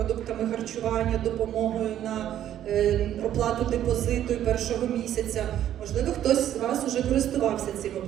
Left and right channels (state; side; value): quieter; left; 11.4 dB